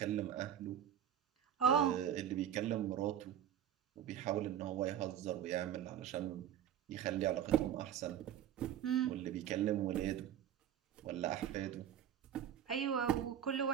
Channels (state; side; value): quieter; left; 10.0 dB